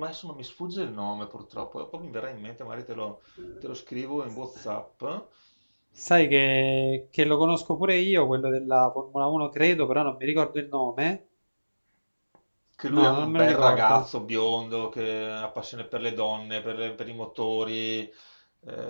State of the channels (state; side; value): inverted; both; correlation -1.00